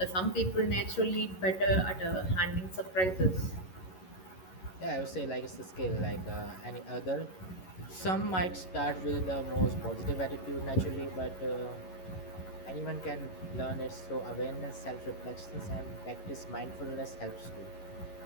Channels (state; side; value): late; right; 11 ms